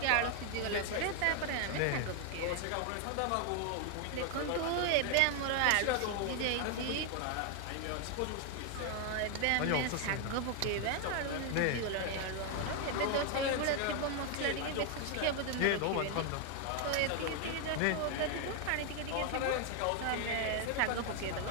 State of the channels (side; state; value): both; different; correlation 0.01